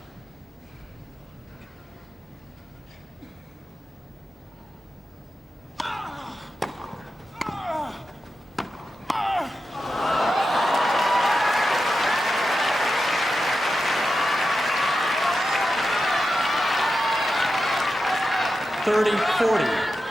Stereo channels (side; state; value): both; normal; correlation 0.90